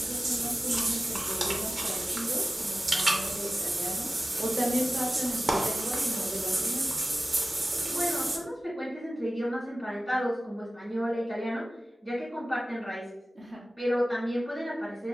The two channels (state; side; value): normal; both; correlation 0.96